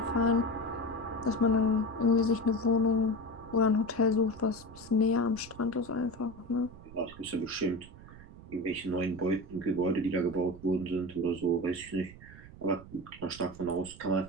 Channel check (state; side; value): noise; right; rumble, 18 dB below the sound